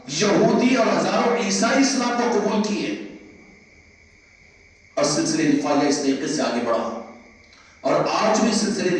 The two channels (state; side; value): identical; both; correlation 1.00